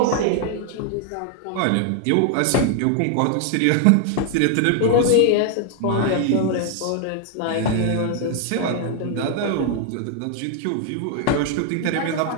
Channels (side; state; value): both; different; correlation 0.00